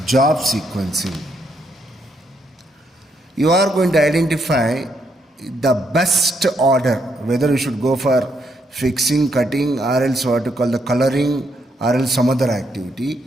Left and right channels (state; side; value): normal; both; correlation 0.76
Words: Job sequencing. You are going to identify the best order, whether you should go for fixing, cutting, or else what you call the coloring, or else some other activity.